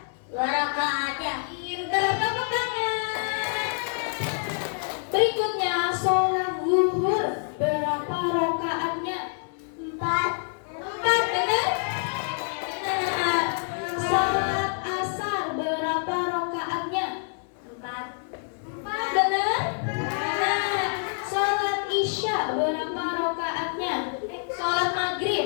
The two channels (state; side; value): silent; right; 60 dB below the other